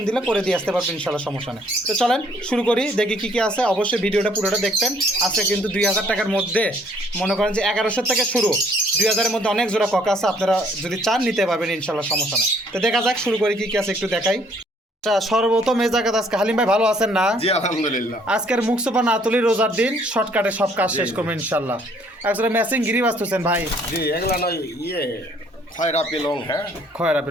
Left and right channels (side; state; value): both; normal; correlation 0.63